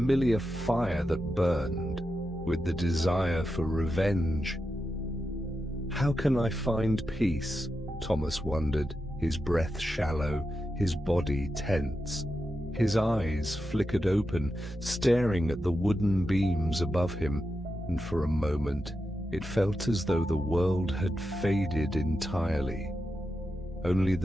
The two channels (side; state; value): both; normal; correlation 0.88